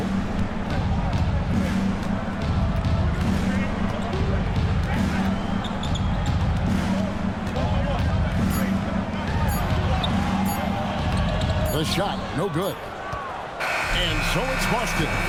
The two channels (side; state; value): both; identical; correlation 1.00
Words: The shot, no good. And so it's Boston,